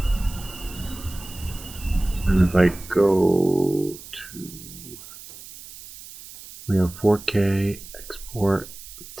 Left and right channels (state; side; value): noise; right; hiss, 16 dB below the sound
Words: And if I go to, we have 4K, export,